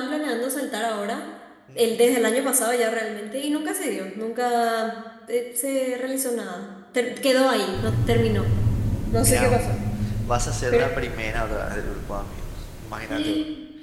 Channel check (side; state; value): both; identical; correlation 1.00